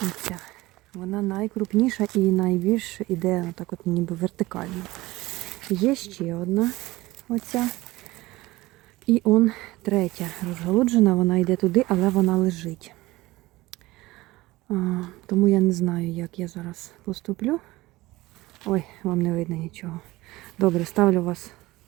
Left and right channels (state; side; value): quieter; left; 19.3 dB